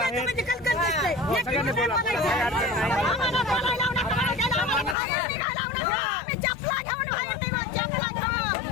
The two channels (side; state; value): right; drops out; at 5.0 s